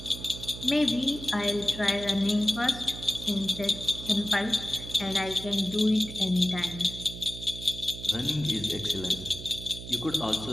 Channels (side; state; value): right; noise; hum, 11 dB below the sound